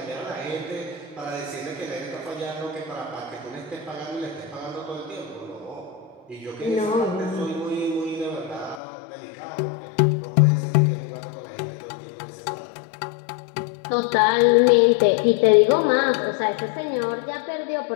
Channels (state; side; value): drops out; right; at 8.8 s